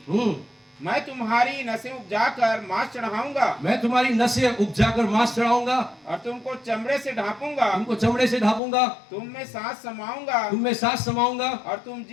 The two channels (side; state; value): right; drops out; at 8.6 s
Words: मैं तुम्हारी नसें उपजाकर मांस चढ़ाऊंगा मैं तुम्हारी नसें उपजाकर मांस चढ़ाऊंगा, और तुमको चमड़े से ढांपूंगा। तुमको चमड़े से ढापूंगा, तुम में सांस समाऊंगा तुम में सांस समाऊंगा, और तुम